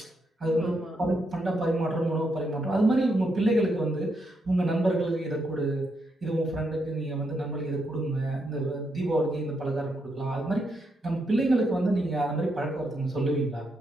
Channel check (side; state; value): both; normal; correlation 0.80